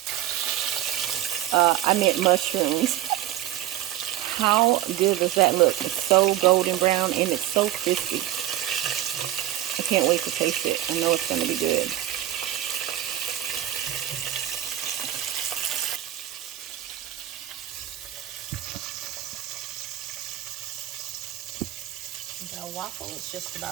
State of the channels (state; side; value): quieter; left; 13.1 dB